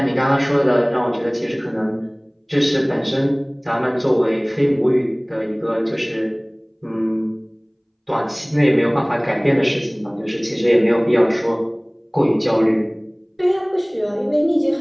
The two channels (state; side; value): identical; both; correlation 1.00